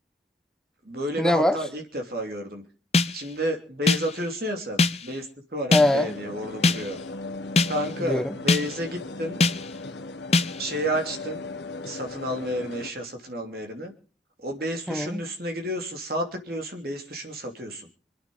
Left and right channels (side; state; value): both; normal; correlation 0.62